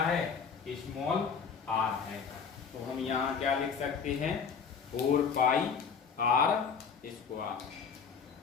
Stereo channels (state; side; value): quieter; right; 6.1 dB